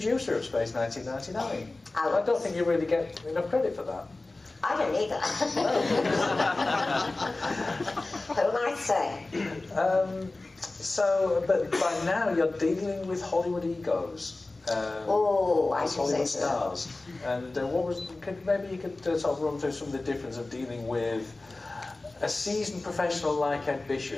of Space 1999. I don't think you really get enough credit for that. I don't either. Who might say? But by now you're dealing with Hollywood egos. I should say so. Stars. And maybe you could sort of run through some of the difference of dealing with a seasoned professional like Ed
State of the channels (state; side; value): quieter; right; 3.1 dB